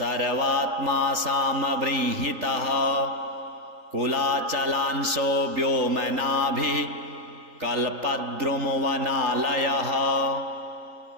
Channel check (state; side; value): late; left; 3.8 ms